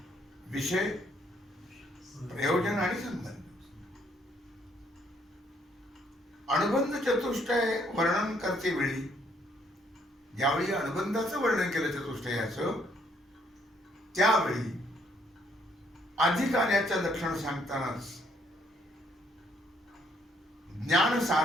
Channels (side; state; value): both; normal; correlation 0.68